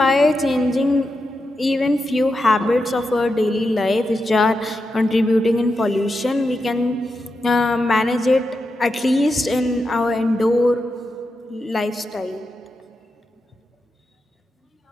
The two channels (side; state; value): both; normal; correlation 0.87